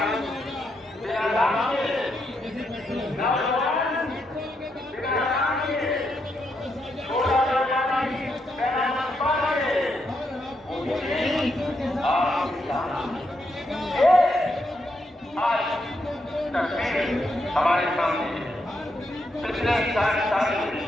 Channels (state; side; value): normal; both; correlation 0.80